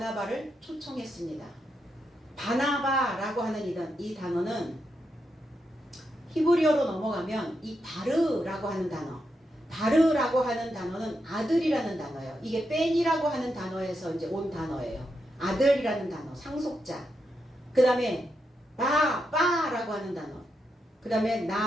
초청했습니다. 바나바라고 하는 이 단어는 히브리어로 넘어가면 이 바르라고 하는 단어, 바르라고 하는 단어는 아들이라는 단어예요. 이게 뺀이라고 하는 단어에서 이제 온 단어예요. 아들이라는 단어, 상속자. 그 다음에 바라고 하는 단어. 그 다음에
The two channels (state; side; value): normal; both; correlation 0.84